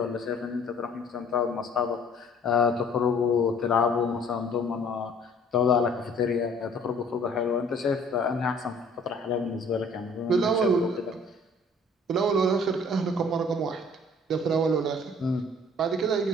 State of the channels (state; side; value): normal; both; correlation 0.54